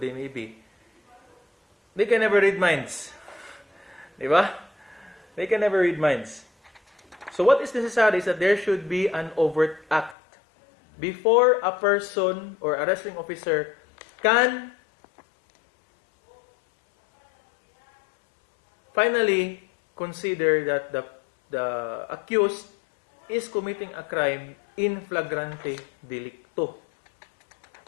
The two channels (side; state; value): right; drops out; at 10.2 s